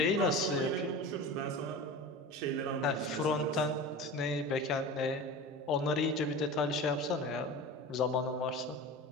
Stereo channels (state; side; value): normal; both; correlation 0.32